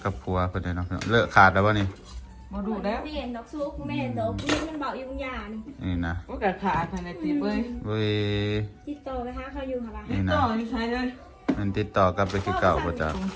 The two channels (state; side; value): identical; both; correlation 1.00